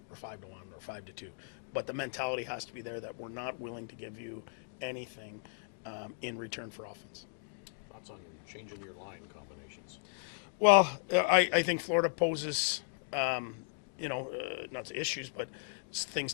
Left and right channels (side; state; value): right; silent; digital silence